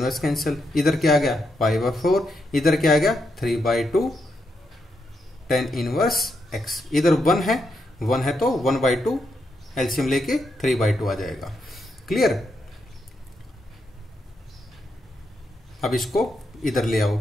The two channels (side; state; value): both; normal; correlation 0.81